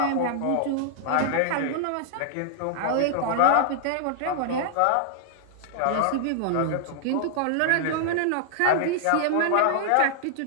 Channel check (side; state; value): both; different; correlation -0.01